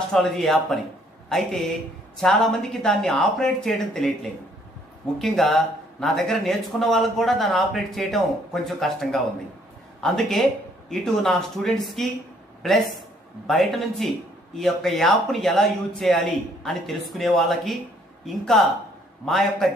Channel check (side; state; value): both; normal; correlation 0.64